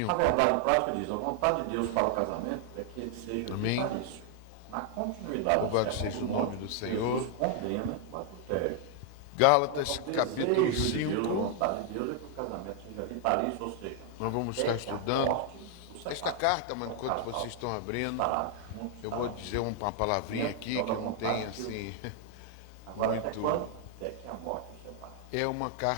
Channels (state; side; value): different; both; correlation 0.00